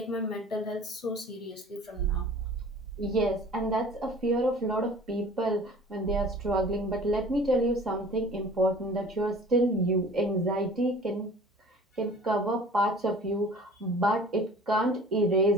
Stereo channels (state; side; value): normal; both; correlation 0.46